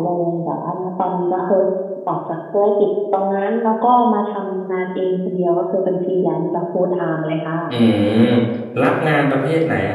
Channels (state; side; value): identical; both; correlation 1.00